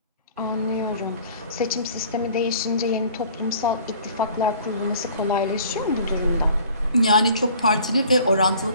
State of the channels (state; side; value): inverted; both; correlation -0.50